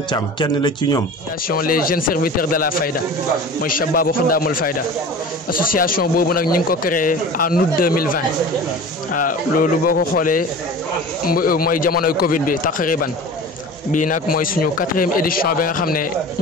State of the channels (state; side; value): normal; both; correlation 0.37